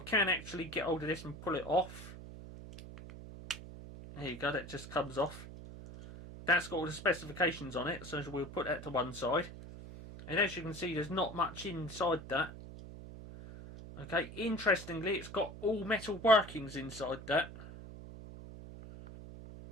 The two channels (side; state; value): right; noise; hum, 13 dB below the sound